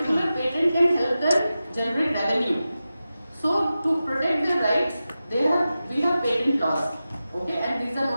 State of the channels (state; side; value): inverted; both; correlation -0.93